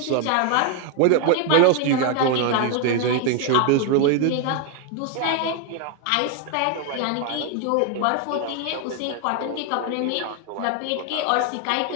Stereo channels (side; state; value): both; different; correlation 0.01